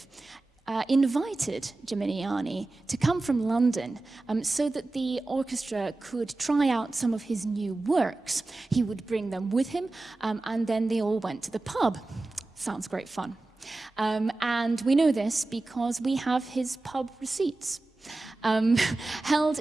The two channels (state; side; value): quieter; left; 3.1 dB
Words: invited Gimignani to come from London so that the orchestra could try out some of his new works. He would bring them with him, and then they all went to the pub. Sounds great fun. And we know this because we have his pub receipts. Held